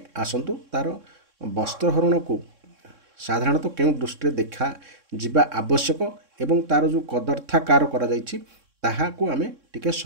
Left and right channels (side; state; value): left; late; 3.6 ms